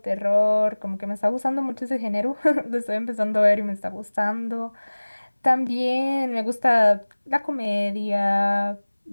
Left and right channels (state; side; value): inverted; both; correlation -1.00